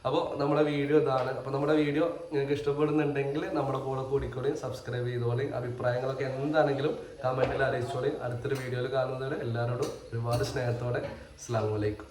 അപ്പോൾ നമ്മുടെ വീഡിയോ ഇതാണ്. അപ്പോൾ നമ്മുടെ വീഡിയോ നിങ്ങൾക്ക് ഇഷ്ടപ്പെടുന്നുണ്ടെങ്കിൽ നമ്മുടെ കൂടെ കൂടിക്കോളി, സബ്സ്ക്രൈബ് ചെയ്തോളി. അഭിപ്രായങ്ങളൊക്കെ എന്താണെങ്കിലും കമൻറ്റിൽ അറിയിച്ചോളി. അടുത്തൊരു വീഡിയോയിൽ കാണുന്നവരെ എല്ലാവരോടും ഒരുപാട് സ്നേഹത്തോടെ അസ്സലാമു അലൈക്കും.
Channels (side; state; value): both; identical; correlation 1.00